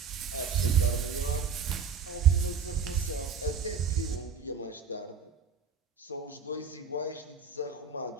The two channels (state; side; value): quieter; left; 6.1 dB